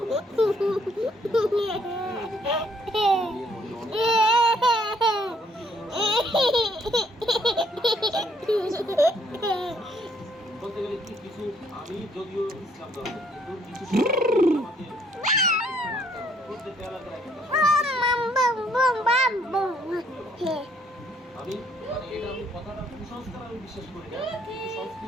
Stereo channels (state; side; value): normal; both; correlation 0.66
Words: বলতে গেলে কিছু আমি যদিও ইসলাম ধর্ম কিন্তু কিছু আমাকে প্রত্যেকটা এলাকার একটা আমি মানে এটা আমি কথাটা কুসংস্কার আমি বিশ্বাস করি না, কিন্তু